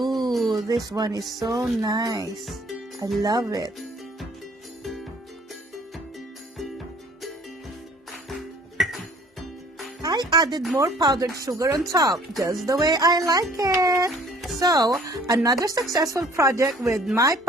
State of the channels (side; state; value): both; normal; correlation 0.55